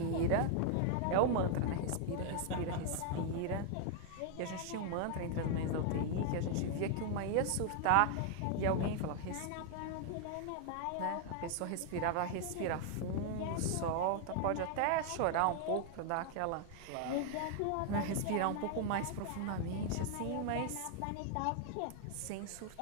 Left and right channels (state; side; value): different; both; correlation 0.00